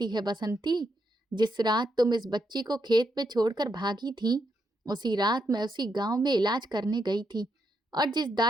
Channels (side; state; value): both; normal; correlation 0.81